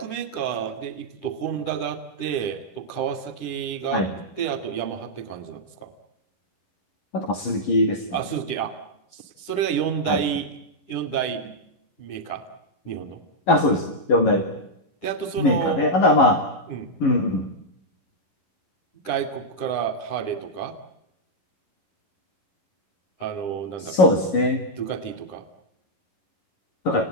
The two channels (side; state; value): right; late; 11 ms